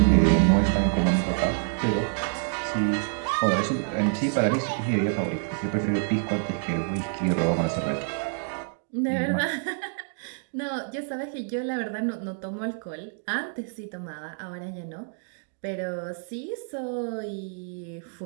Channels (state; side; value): silent; left; 60 dB below the other